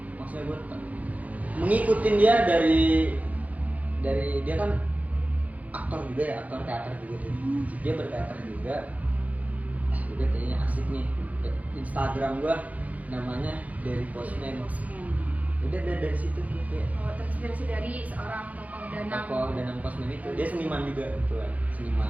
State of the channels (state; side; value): late; left; 0.073 ms